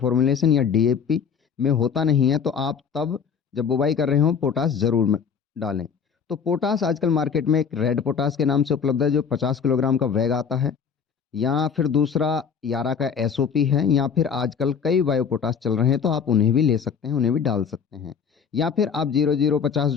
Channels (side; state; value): right; quieter; 6.8 dB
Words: या DAP में होता नहीं है तो आप तब जब बुवाई कर रहे हो पोटास जरूर डालें। तो पोटास आजकल मार्केट में एक रेड पोटास के नाम से उपलब्ध है जो 50 किलोग्राम का बैग आता है, या फिर दूसरा यारा का SOP है, या फिर आजकल कई बायो पोटास चल रहे हैं तो आप उन्हें भी ले सकते हैं, उन्हें भी डाल सकते हैं। या फिर आप 0050